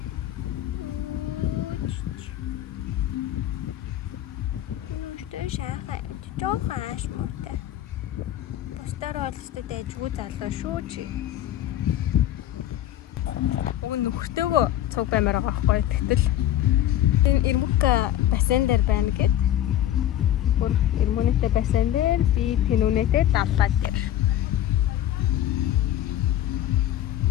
Шахаа жоохон аашмуутай. Тастаар ойлстой дайжгүй залуу шүү чи. Уг нөхөртөөгөө цуг баймаар байгаа байхгүй. Тэгтэл энэ Ирмүка бассейн дээр байна гэд. Бүр Ирмүнэтэй бассейн дээр би Тэнүнэтэй даллаа дээр.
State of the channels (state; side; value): quieter; right; 12.3 dB